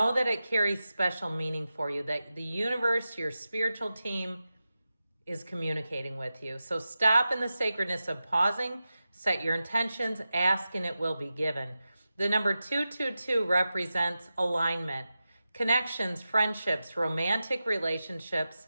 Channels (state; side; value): inverted; both; correlation -0.93